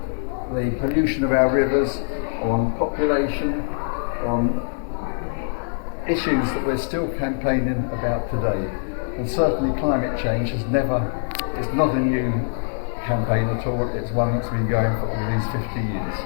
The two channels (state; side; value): silent; right; digital silence